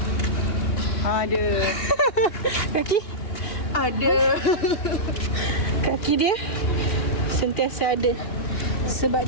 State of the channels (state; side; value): late; right; 2.8 ms